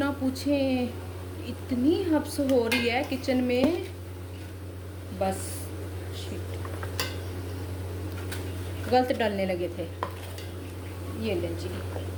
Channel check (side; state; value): both; identical; correlation 1.00